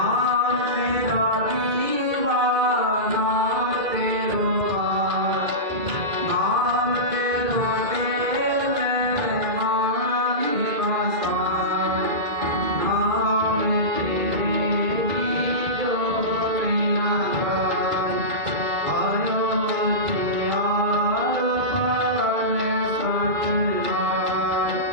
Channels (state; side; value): late; left; 2.2 ms